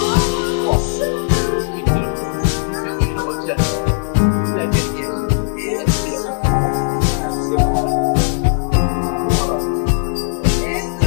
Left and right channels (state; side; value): silent; right; digital silence